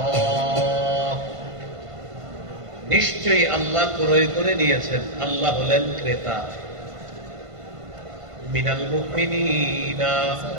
নিশ্চয়ই আল্লাহ ক্রয় করে নিয়েছেন। আল্লাহ হলেন ক্রেতা। মিনাল মুমিনিনা,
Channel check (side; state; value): left; late; 1.5 ms